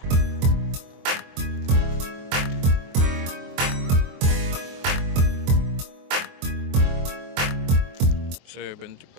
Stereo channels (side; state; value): left; late; 23 ms